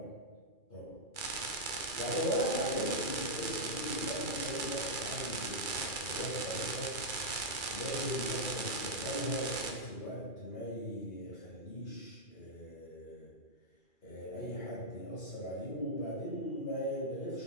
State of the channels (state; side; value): late; right; 2.4 ms